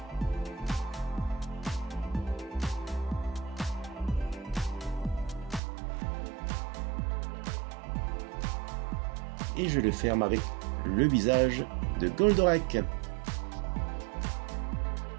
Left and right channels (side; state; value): left; drops out; at 5.6 s